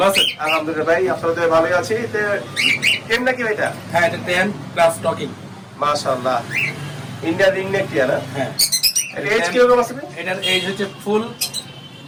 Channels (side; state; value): both; identical; correlation 1.00